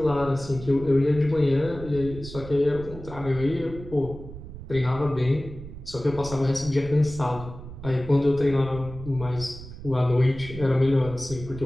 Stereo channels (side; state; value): right; noise; rumble, 13 dB below the sound